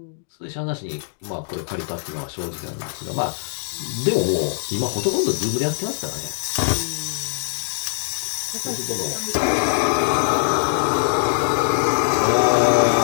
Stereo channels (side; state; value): right; silent; digital silence